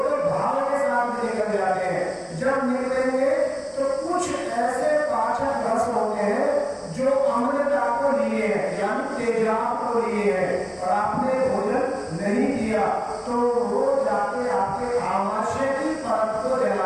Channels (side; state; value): both; identical; correlation 1.00